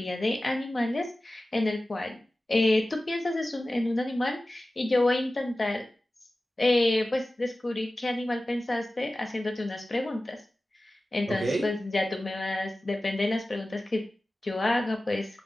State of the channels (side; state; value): both; normal; correlation 0.96